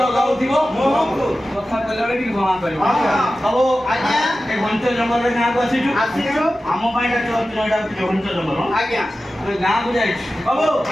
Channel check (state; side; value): normal; both; correlation 0.94